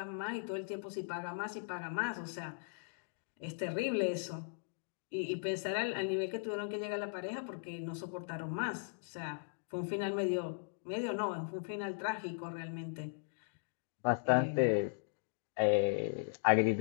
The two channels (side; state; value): right; silent; digital silence